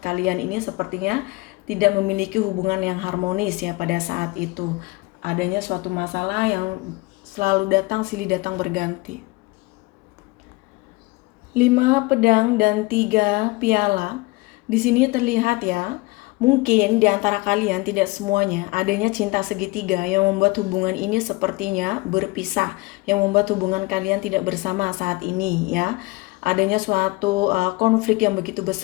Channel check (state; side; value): quieter; right; 23.4 dB